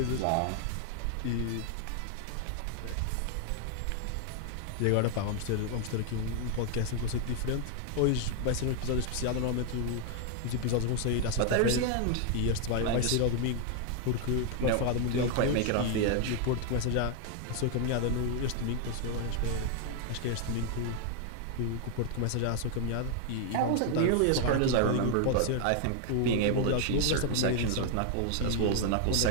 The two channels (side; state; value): both; different; correlation 0.00